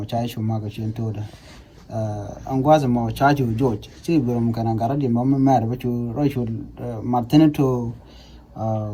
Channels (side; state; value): both; identical; correlation 1.00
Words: cha shumaga shin toda angwas mo cha ju George si burum kana garadi mo mer bachu roishu martinito